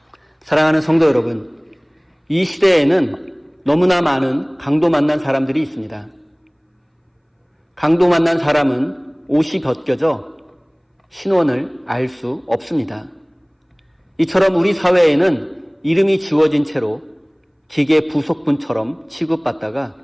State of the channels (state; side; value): identical; both; correlation 1.00